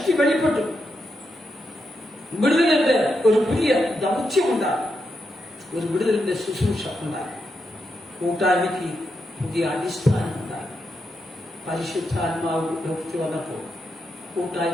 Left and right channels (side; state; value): both; normal; correlation 0.84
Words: വെളിപ്പെട്ടു. വിടുതലിന്റെ ഒരു പുതിയ ദൗത്യമുണ്ടാകും, ഒരു വിടുതലിന്റെ ശുശ്രൂഷ ഉണ്ടാകും. കൂട്ടായ്മയ്ക്ക് പുതിയ അടിസ്ഥാനം ഉണ്ടാകും. പരിശുദ്ധാത്മാവ് ലോകത്തിൽ വന്നപ്പോൾ